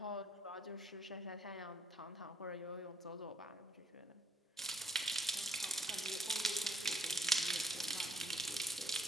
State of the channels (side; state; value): both; normal; correlation 0.69